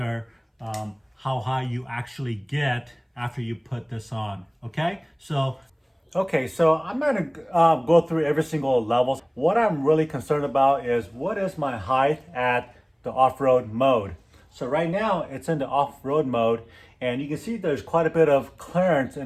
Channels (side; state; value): both; identical; correlation 1.00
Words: how high you actually get after you put this on. Okay, so I'm going to go through every single level. What I'm really concerned about is what is my height at the off-road mode. So right now it's in the off-road mode, and you can see there's quite a bit of clearance